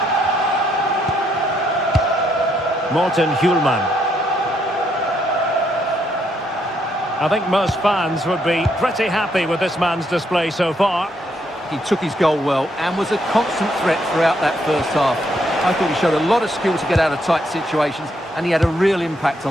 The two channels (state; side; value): normal; both; correlation 0.74